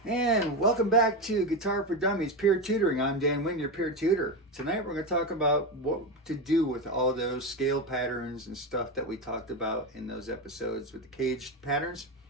And welcome back to Guitar for Dummies Peer Tutoring. I'm Dan Wynn, your peer tutor. Tonight we're going to talk about what to do with all those scale patterns and stuff that we talked about in those episodes with the caged patterns.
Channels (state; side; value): normal; both; correlation 0.15